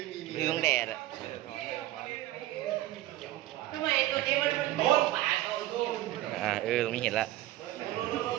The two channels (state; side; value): quieter; left; 15.2 dB